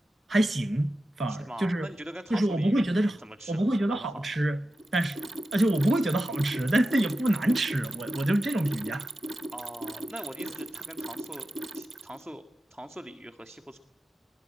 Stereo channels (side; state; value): both; normal; correlation 0.92